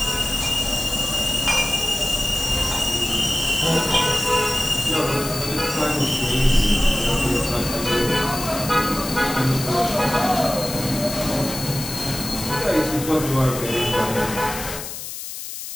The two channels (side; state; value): left; noise; hiss, 8 dB below the sound